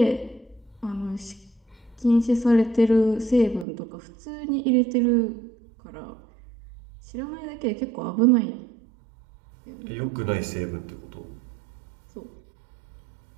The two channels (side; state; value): left; drops out; at 3.7 s